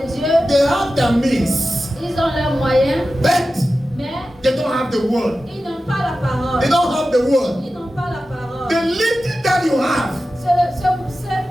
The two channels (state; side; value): normal; both; correlation 0.94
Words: Dieu, they have the means, ils ont leurs moyens, but mais they don't have the word. ils n'ont pas la parole. They don't have the word. Ils n'ont pas la parole. The little that you have